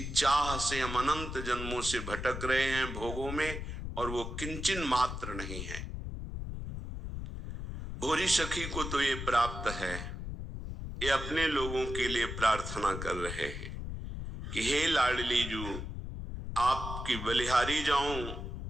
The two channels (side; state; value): left; noise; rumble, 6 dB below the sound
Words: चाह से हम अनंत जन्मों से भटक रहे हैं भोगों में, और वो किंचन मात्र नहीं है। भोरी सखी को तो ये प्राप्त है। ये अपने लोगों के लिए प्रार्थना कर रहे हैं कि हे लाडली जू, आपकी बलिहारी जाऊं,